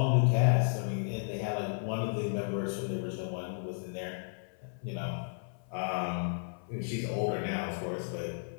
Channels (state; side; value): silent; right; 56 dB below the other